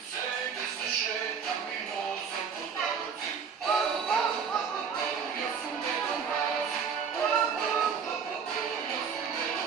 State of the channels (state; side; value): quieter; left; 6.5 dB